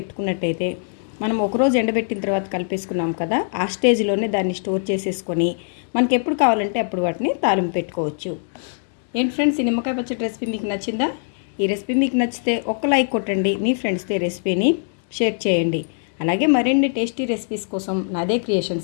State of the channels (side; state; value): right; silent; digital silence